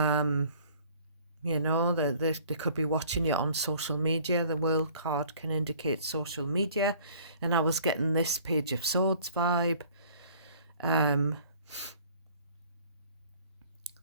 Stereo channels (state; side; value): inverted; both; correlation -0.53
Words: know, they could be watching you on social media. The World card can indicate social media, and I was getting this Page of Swords vibe.